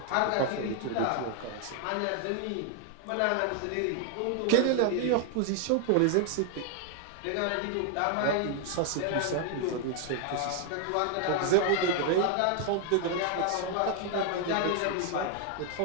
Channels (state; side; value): different; both; correlation 0.00